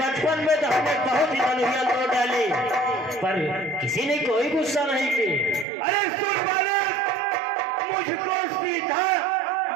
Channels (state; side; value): drops out; left; at 5.7 s